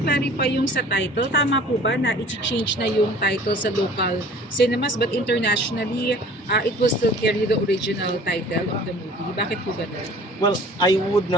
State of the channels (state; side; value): normal; both; correlation 0.48